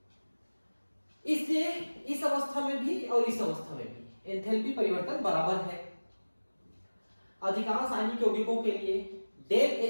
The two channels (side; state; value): both; inverted; correlation -1.00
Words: इसलिए इस अवस्था में भी और इस अवस्था में भी एंथैल्पी परिवर्तन बराबर है। अधिकांश आयनिक यौगिकों के लिए डेल